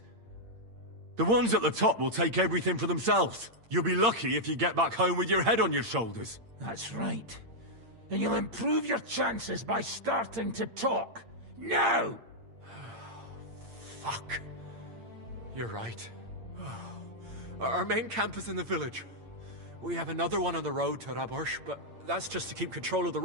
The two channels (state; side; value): late; left; 8.8 ms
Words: The ones at the top will take everything for themselves. You'll be lucky if you get back home with your head on your shoulders. That's right. And you'll improve your chances by starting to talk. Now! Fuck. You're right. Our main camp is in the village. We have another one on the road to Raborsh, but that's just to keep control of the